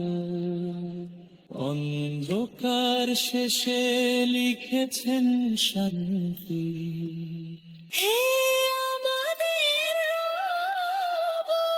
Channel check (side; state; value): both; identical; correlation 1.00